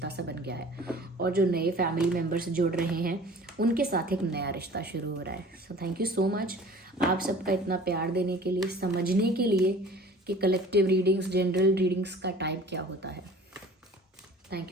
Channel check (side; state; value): both; normal; correlation 0.45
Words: सा बन गया है। और जो नए फैमिली मेम्बर्स जुड़ रहे हैं उनके साथ एक नया रिश्ता शुरू हो रहा है। So thank you so much आप सबका इतना प्यार देने के लिए, समझने के लिए कि कलेक्टिव रीडिंग्स, जनरल रीडिंग्स का टाइप क्या होता है।